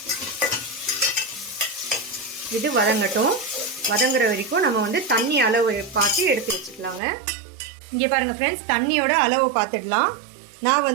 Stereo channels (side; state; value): left; drops out; at 7.0 s